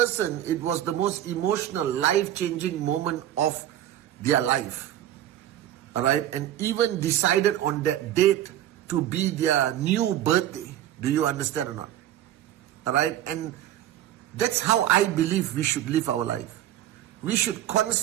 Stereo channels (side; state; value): left; quieter; 12.4 dB